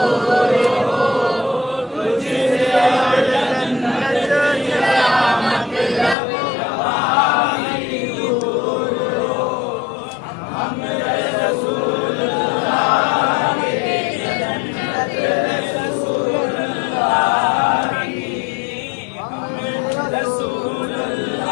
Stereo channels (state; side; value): drops out; right; at 6.2 s